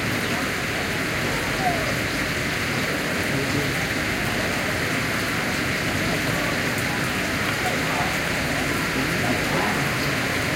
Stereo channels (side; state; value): both; identical; correlation 1.00